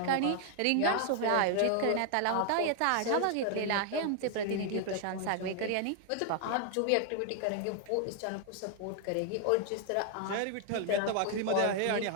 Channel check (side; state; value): both; different; correlation 0.00